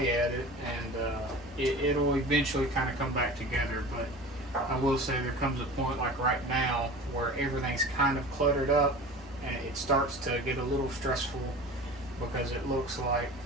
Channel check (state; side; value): normal; both; correlation 0.37